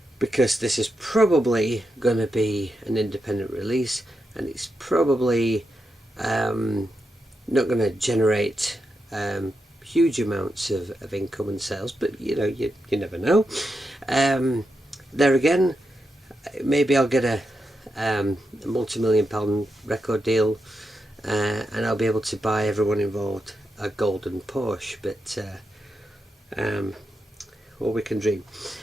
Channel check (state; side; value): normal; both; correlation 0.86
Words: is probably going to be an independent release, and it's probably not going to generate huge amounts of income and sales, but you know, you never know. There again, maybe I'll get a multi-million-pound record deal, and I'll be able to buy everyone involved a golden Porsche, but well, we can dream.